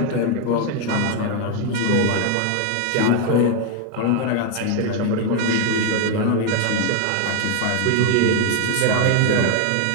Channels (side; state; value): both; different; correlation 0.01